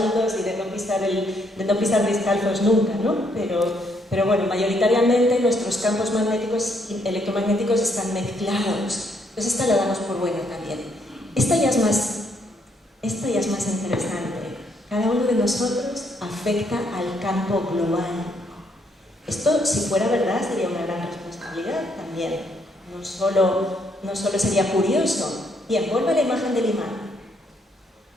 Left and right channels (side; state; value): both; normal; correlation 0.72